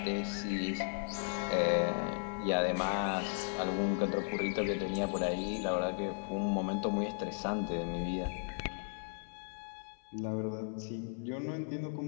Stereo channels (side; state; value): right; silent; 54 dB below the other